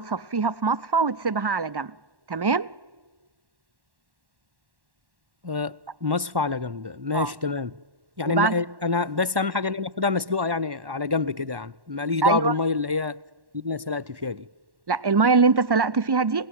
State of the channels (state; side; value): late; left; 1.1 ms